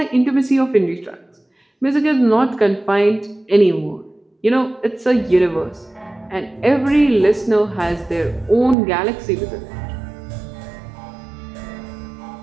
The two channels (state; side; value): drops out; left; at 8.8 s